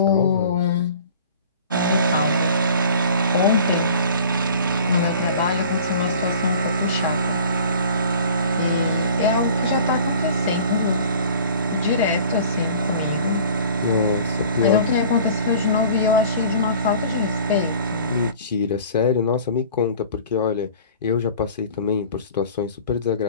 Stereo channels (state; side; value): inverted; both; correlation -0.46